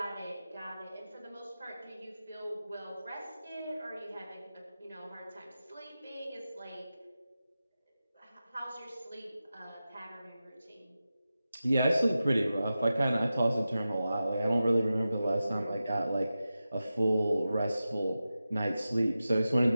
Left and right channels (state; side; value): inverted; both; correlation -0.93